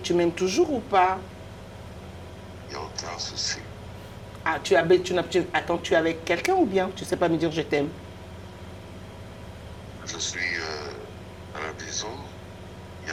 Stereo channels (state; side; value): identical; both; correlation 1.00